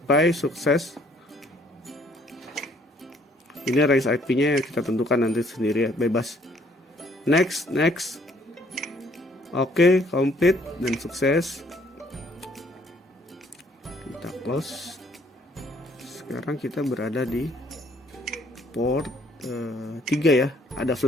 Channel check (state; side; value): normal; both; correlation 0.63